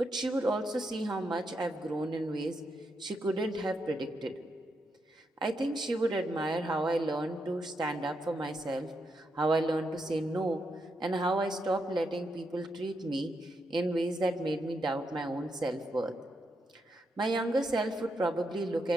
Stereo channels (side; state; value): both; normal; correlation 0.82